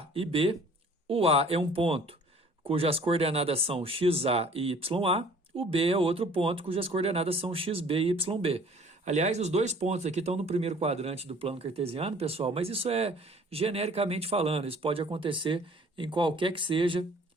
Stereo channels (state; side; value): normal; both; correlation 0.52